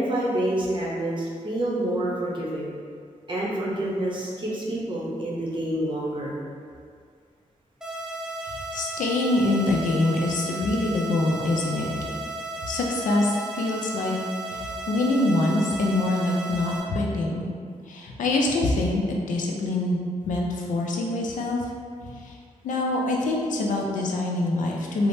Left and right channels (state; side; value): normal; both; correlation 0.68